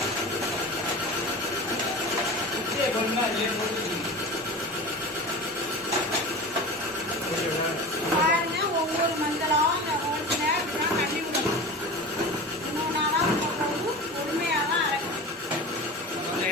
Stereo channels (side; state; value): both; normal; correlation 0.32